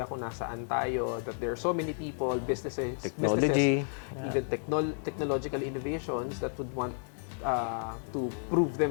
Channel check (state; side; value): silent; right; digital silence